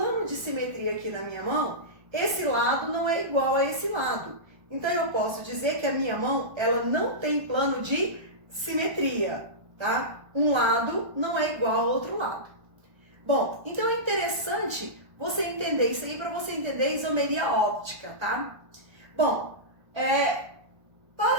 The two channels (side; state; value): left; late; 1.3 ms